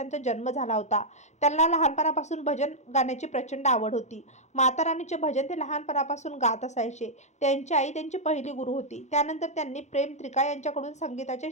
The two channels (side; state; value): right; late; 0.33 ms